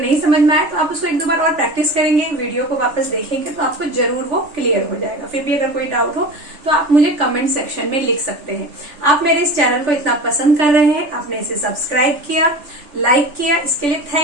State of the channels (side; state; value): left; late; 3.5 ms